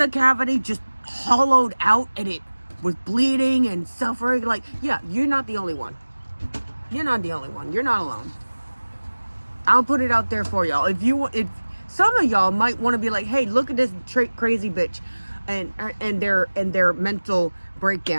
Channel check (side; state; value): both; inverted; correlation -1.00